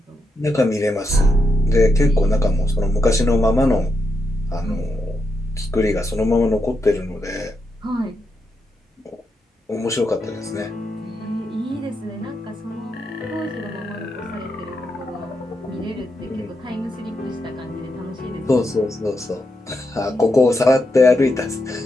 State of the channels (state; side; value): normal; both; correlation 0.83